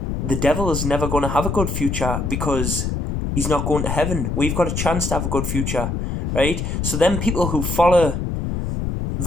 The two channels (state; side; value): noise; left; rumble, 2 dB below the sound